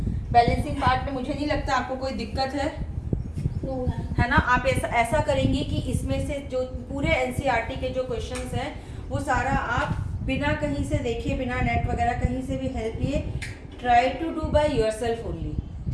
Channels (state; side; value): identical; both; correlation 1.00